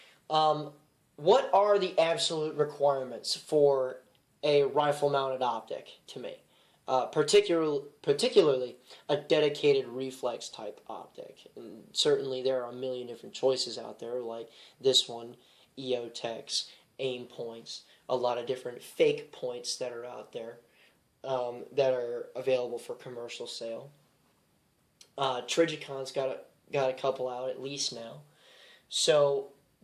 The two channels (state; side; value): identical; both; correlation 1.00